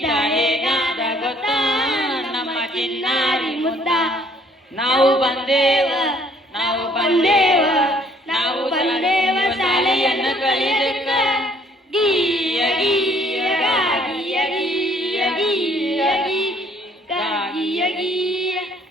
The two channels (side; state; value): both; normal; correlation 0.62